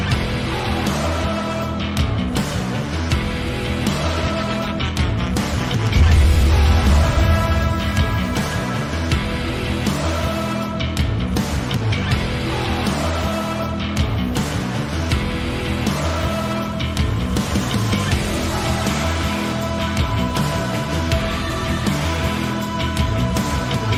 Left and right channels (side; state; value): both; identical; correlation 1.00